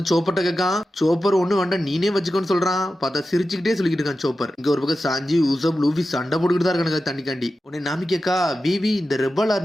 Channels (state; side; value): normal; both; correlation 0.92